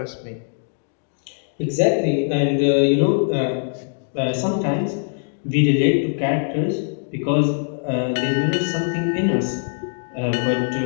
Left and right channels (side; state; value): right; silent; digital silence